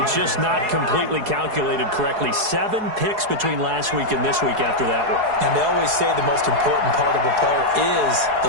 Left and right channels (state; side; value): late; left; 4.7 ms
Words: just not completely calculated correctly. 7 picks between last week and this week after that one. And they always say the most important part of a player is